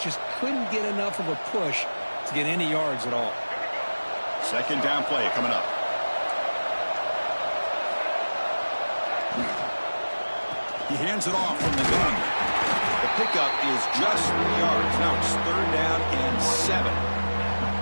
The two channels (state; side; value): inverted; both; correlation -1.00